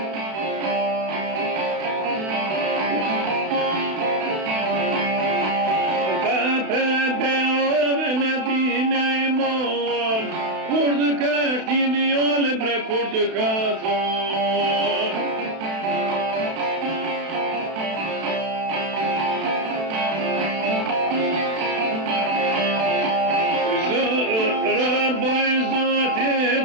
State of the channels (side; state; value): left; late; 32 ms